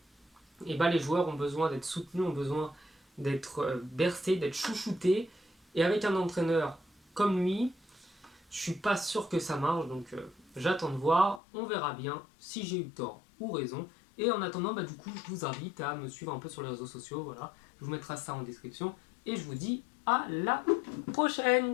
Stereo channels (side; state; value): right; drops out; at 11.4 s